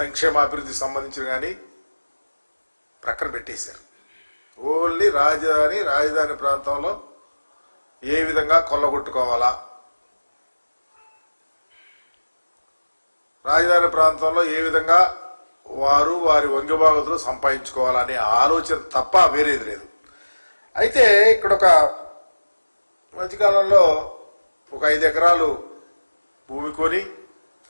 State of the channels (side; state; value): both; inverted; correlation -1.00